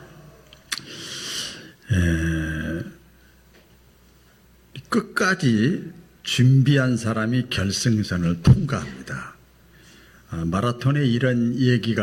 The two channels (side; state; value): both; identical; correlation 1.00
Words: 끝까지 준비한 사람이 결승선을 통과합니다. 마라톤에 이런